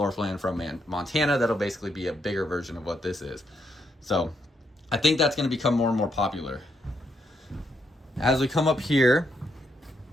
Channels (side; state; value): both; normal; correlation 0.78